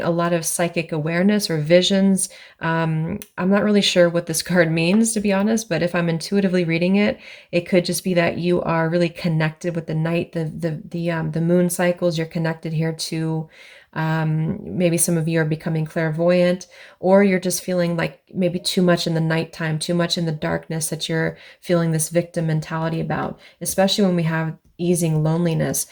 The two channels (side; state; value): both; identical; correlation 1.00